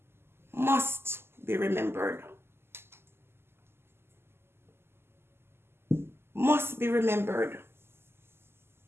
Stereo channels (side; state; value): left; late; 0.12 ms